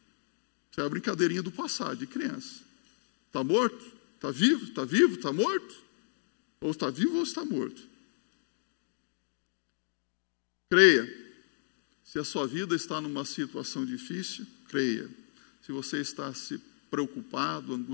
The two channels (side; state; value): right; silent; digital silence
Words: Isso é a brincadeirinha do passado, de criança. Está morto? Está vivo? Está vivo? Está morto? Ou está vivo ou está morto. Creia, se a sua vida está numa situação difícil, creia. Se você está se preocupado,